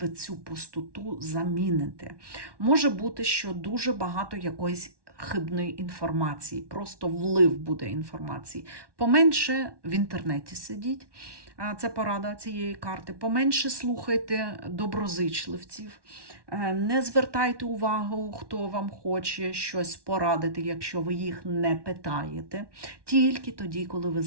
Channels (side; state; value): left; late; 1.1 ms